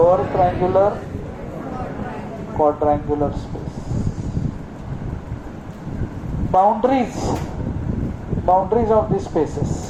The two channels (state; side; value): identical; both; correlation 1.00